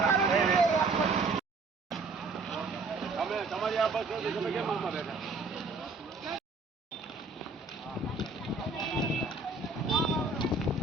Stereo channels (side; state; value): left; quieter; 3.8 dB